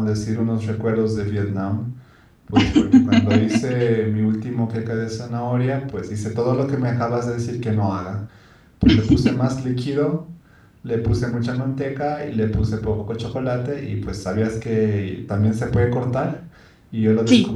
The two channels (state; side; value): identical; both; correlation 1.00